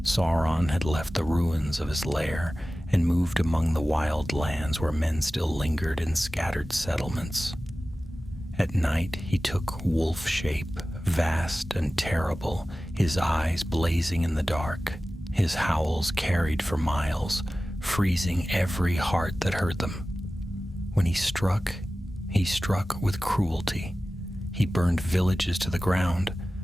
Sauron had left the ruins of his lair and moved among the wild lands where men still lingered in scattered settlements. At night he took wolf shape, vast and terrible, his eyes blazing in the dark. His howls carried for miles, freezing every heart that heard them. When he struck with cruelty. He burned villages to the ground,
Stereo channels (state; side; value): normal; both; correlation 0.96